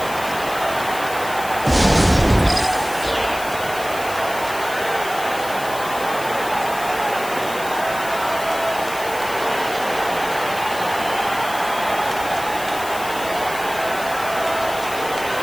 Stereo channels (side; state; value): left; noise; hiss, 12 dB below the sound